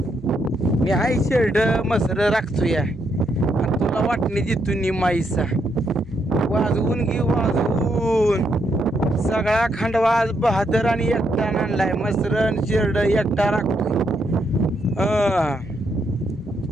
मी हाय शेरड मसर राखतो या आणि तुला वाटणी देतो निमाईसा. वाजवून घे वाजवून सगळा खंडवाज बहादर आणि एकटा आणलाय. मसरण शेरड एकटा राखतोय.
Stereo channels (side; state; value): both; normal; correlation 0.77